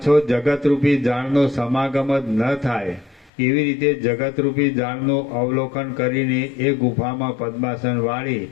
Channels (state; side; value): drops out; right; at 3.3 s